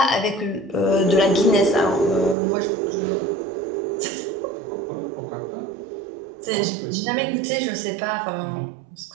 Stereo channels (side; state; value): left; drops out; at 2.4 s